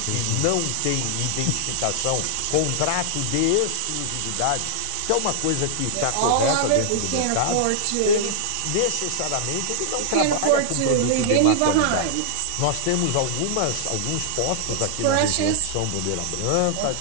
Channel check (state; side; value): different; both; correlation 0.00